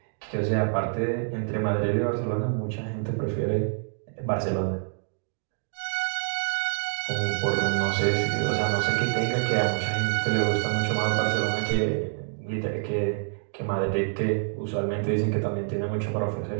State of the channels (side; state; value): left; silent; digital silence